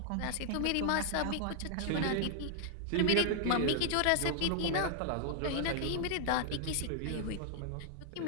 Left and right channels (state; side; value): different; both; correlation -0.01